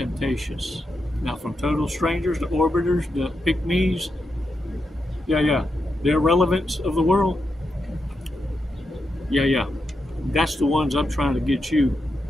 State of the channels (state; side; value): normal; both; correlation 0.85